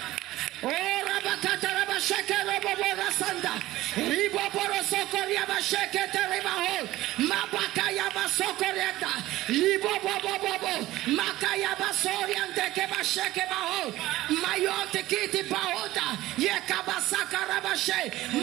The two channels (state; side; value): quieter; left; 16.5 dB